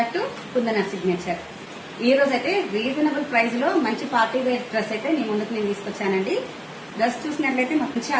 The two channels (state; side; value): identical; both; correlation 1.00